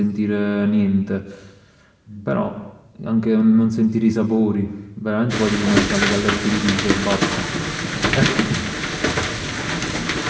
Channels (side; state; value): both; identical; correlation 1.00